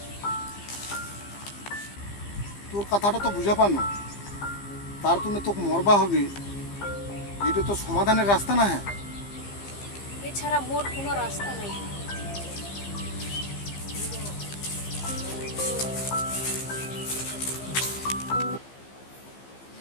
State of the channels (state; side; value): late; right; 15 ms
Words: তোর কথাটা তো বুঝা পানো, তার তুমি তোকে মরবা হবে, এটা তো সমাধানের রাস্তা না। হ্যাঁ, এছাড়া মোর কোনো রাস্তা নাই।